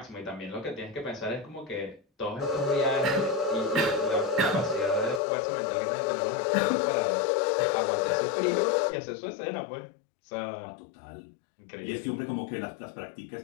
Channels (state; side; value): drops out; right; at 5.2 s